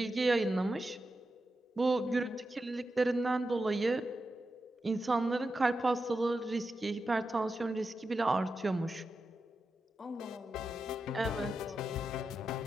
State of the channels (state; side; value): normal; both; correlation 0.89